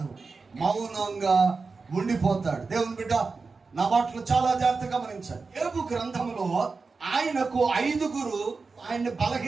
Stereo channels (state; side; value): quieter; left; 4.3 dB